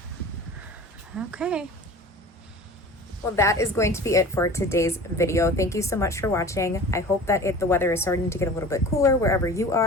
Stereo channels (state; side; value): normal; both; correlation 0.39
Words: Okay. Well, that is going to be it for today's video. Thank you so much for watching. I hope that if the weather is starting to get a little bit cooler wherever you